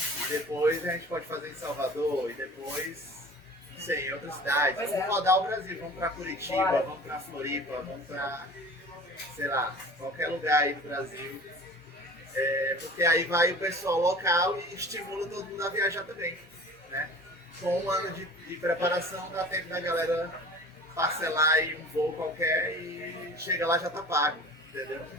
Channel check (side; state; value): both; normal; correlation 0.42